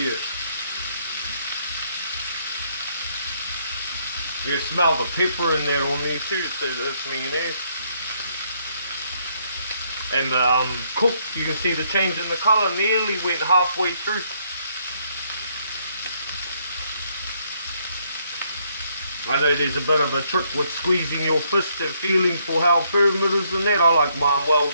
You smell the pepper in there on there too, so that's mayonnaise. And cooked, you can see the change in the colour, nearly went halfway through. I know there's a bit of a trick with squeezing your fist and feeling for how firm it is and that. I like mine well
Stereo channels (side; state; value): both; inverted; correlation -0.70